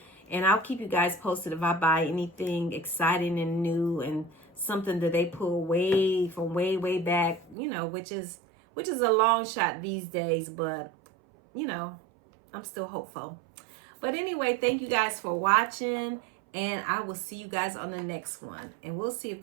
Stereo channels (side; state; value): left; drops out; at 7.6 s